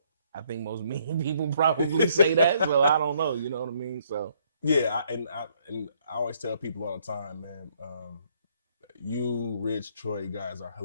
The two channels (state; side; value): inverted; both; correlation -0.67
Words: I think most mean people probably say that. So I don't know, you know what I mean? So yeah, I always tell people all the time, man. You, Rich, Troy, guys are